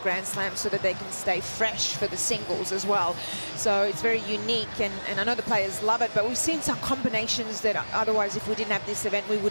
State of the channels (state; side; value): inverted; both; correlation -1.00